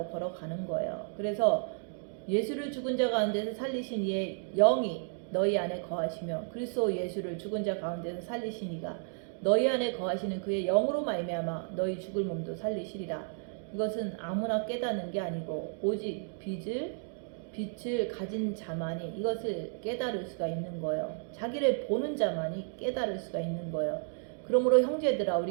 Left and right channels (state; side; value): silent; left; 56 dB below the other